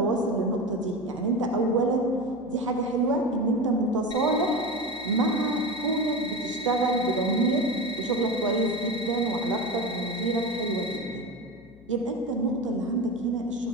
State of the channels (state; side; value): noise; left; hum, 24 dB below the sound